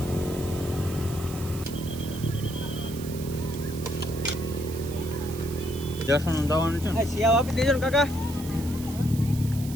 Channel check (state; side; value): noise; right; hiss, 14 dB below the sound